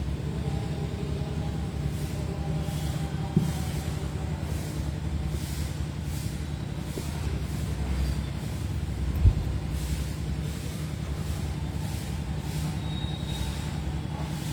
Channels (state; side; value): identical; both; correlation 1.00